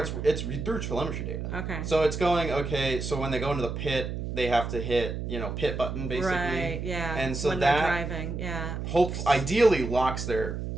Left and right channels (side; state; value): right; noise; hum, 5 dB below the sound